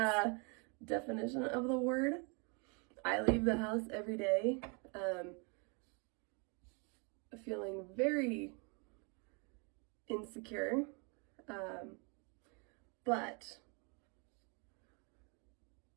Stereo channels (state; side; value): quieter; left; 34.1 dB